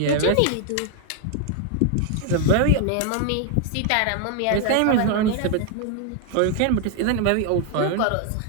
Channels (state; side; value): different; both; correlation 0.00